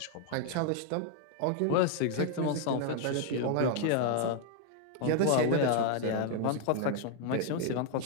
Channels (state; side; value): different; both; correlation 0.00